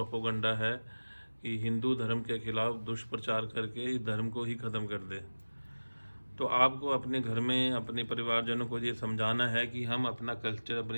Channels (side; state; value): both; inverted; correlation -1.00